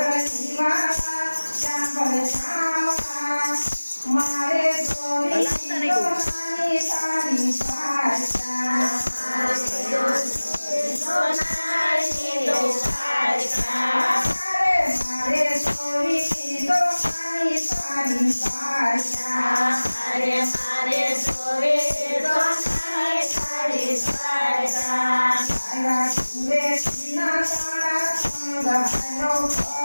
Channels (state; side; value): inverted; both; correlation -1.00